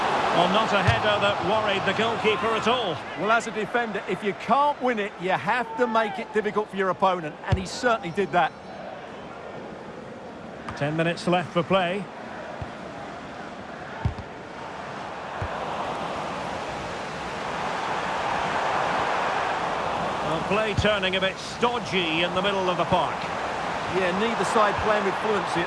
Well, not a header that worried the goalkeeper at all. Well, as a defender, if you can't win it, you have to make it difficult for your opponent, and he certainly did that. 10 minutes left for play. Well, play turning a bit stodgy in the middle of the park. Yeah, neither side playing with fluency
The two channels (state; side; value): identical; both; correlation 1.00